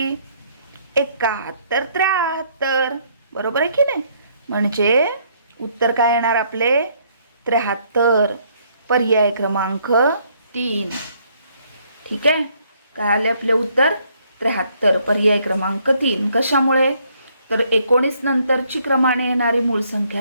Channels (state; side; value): inverted; both; correlation -0.67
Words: 71, 73. बरोबर आहे की नाही? म्हणजे उत्तर काय येणार आपले? 73. पर्याय क्रमांक 3. ठीक आहे. काय आले आपले उत्तर? 73. पर्याय क्रमांक 3. कशामुळे? तर 19 नंतरची क्रमाने येणारी मूळ संख्या